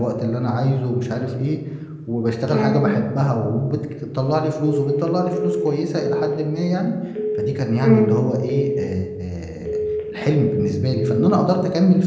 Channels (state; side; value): identical; both; correlation 1.00